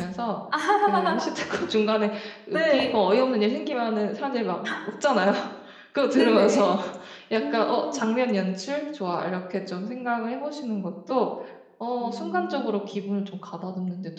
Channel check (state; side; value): identical; both; correlation 1.00